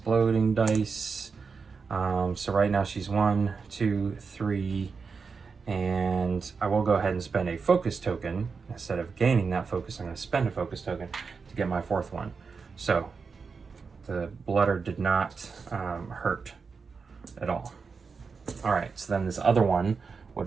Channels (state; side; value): quieter; left; 5.1 dB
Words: dice. So right now she's 1, 2, 3, and I will go ahead and spend a focus token. Instead of gaining that focus, I'm going to spend a focus token to get my 4th one. So the blooder did not hurt at all. All right, so then this other one would